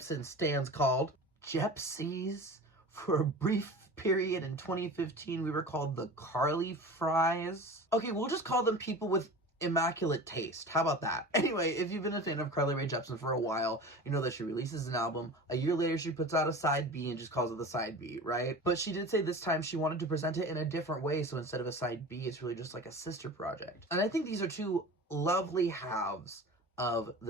stands called? Jepsies. For a brief period in 2015, we were called the Carly Fries. Okay, we'll just call them people with immaculate taste. How about that? Anyway, if you've been a fan of Carly Rae Jepsen for a while, you know that she releases an album. A year later, she puts out a side B and just calls it the side B, right? But she did say this time she wanted to present it in a different way, so instead of a side B, it's really just like a sister project. And I think these are two lovely halves of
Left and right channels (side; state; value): both; normal; correlation 0.35